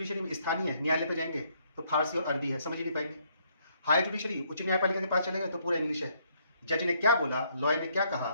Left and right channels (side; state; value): both; inverted; correlation -0.70